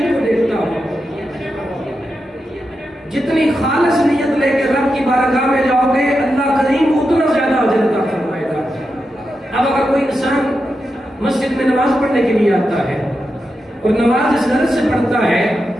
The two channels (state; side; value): normal; both; correlation 0.88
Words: کو دیکھتا ہوں. جتنی خالص نیت لے کے رب کی بارگاہ میں جاؤ گے اللہ کریم اتنا زیادہ اجر عطا فرمائے گا. اب اگر کوئی انسان مسجد میں نماز پڑھنے کے لیے آتا ہے اور نماز اس غرض سے پڑھتا ہے